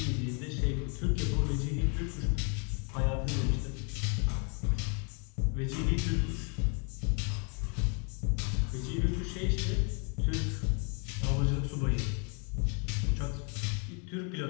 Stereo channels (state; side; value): quieter; right; 36.8 dB